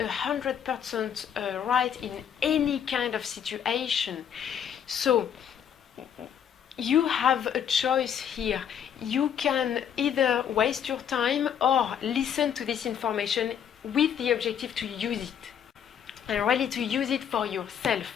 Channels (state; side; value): quieter; right; 8.7 dB